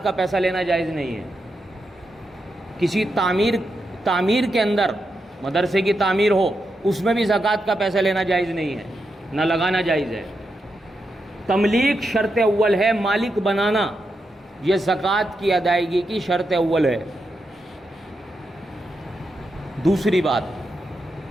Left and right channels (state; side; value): normal; both; correlation 0.85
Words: کا پیسہ لینا جائز نہیں ہے۔ کسی تعمیر کے اندر مدرسے کی تعمیر ہو، اس میں بھی زکوٰۃ کا پیسہ لینا جائز نہیں ہے، نہ لگانا جائز ہے۔ تملیک شرط اول ہے، مالک بنانا، یہ زکوٰۃ کی ادائیگی کی شرط اول ہے۔ دوسری